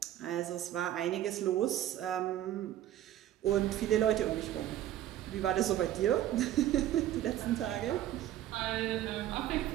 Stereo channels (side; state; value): left; quieter; 12.6 dB